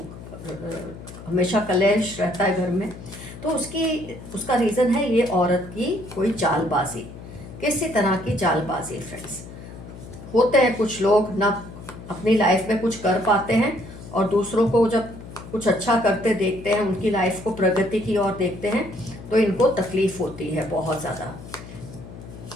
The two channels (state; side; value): noise; left; hum, 14 dB below the sound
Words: हमेशा कलेश रहता है घर में। तो उसका रीज़न है ये औरत की कोई चालबाजी। किसी तरह की चालबाजी फ्रेंड्स। होते हैं कुछ लोग ना अपनी लाइफ में कुछ कर पाते हैं और दूसरों को जब कुछ अच्छा करते देखते हैं, उनकी लाइफ को प्रगति की ओर देखते हैं, तो इनको तकलीफ होती है बहुत ज़्यादा।